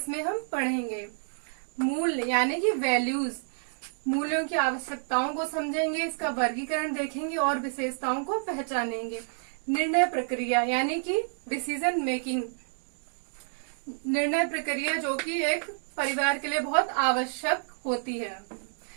हम पढ़ेंगे। मूल्य यानी कि वैल्यूज, मूल्यों की आवश्यकताओं को समझेंगे, इसका वर्गीकरण देखेंगे और विशेषताओं को पहचानेंगे। निर्णय प्रक्रिया यानी कि डिसीजन मेकिंग, निर्णय प्रक्रिया जो कि एक परिवार के लिए बहुत आवश्यक होती है।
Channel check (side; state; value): left; silent; digital silence